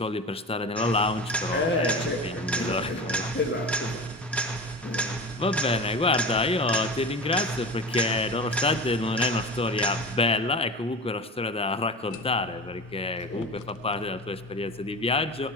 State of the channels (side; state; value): both; normal; correlation 0.31